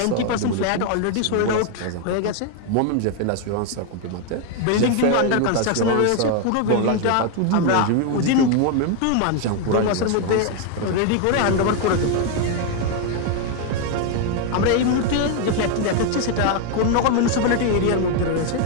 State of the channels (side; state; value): both; different; correlation 0.01